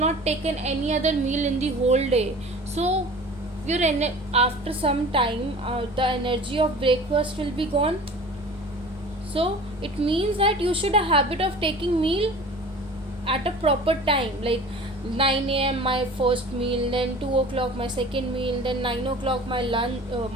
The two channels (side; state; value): both; normal; correlation 0.42